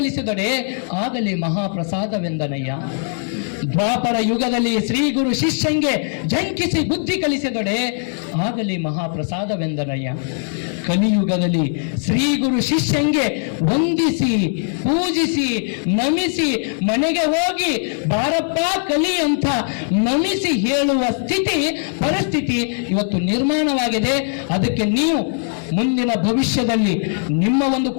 ಆಗಲಿ ಮಹಾಪ್ರಸಾದವೆಂದನಯ್ಯ. ದ್ವಾಪರ ಯುಗದಲ್ಲಿ ಶ್ರೀ ಗುರು ಶಿಷ್ಯಂಗೆ ಜಂಕಿಸಿ ಬುದ್ಧಿ ಕಲಿಸಿದೊಡೆ ಆಗಲಿ ಮಹಾಪ್ರಸಾದವೆಂದನಯ್ಯ. ಕಲಿಯುಗದಲ್ಲಿ ಶ್ರೀ ಗುರು ಶಿಷ್ಯಂಗೆ ವಂದಿಸಿ ಪೂಜಿಸಿ ನಮಿಸಿ ಮನೆಗೆ ಹೋಗಿ ಬಾರಪ್ಪ ಕಲಿ ಅಂತ ನಮಿಸಿ ಹೇಳುವ ಪರಿಸ್ಥಿತಿ ಇವತ್ತು ನಿರ್ಮಾಣವಾಗಿದೆ. ಅದಕ್ಕೆ ನೀವು ಮುಂದಿನ ಭವಿಷ್ಯದಲ್ಲಿ ನಿಮ್ಮ ಒಂದು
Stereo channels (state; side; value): silent; right; digital silence